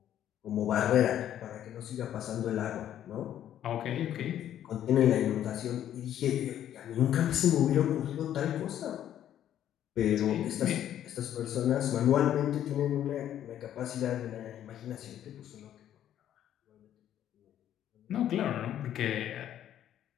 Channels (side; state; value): right; quieter; 11.0 dB